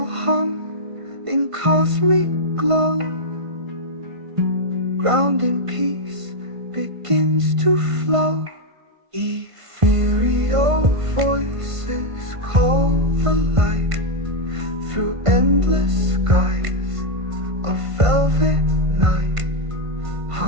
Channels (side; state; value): left; late; 1.5 ms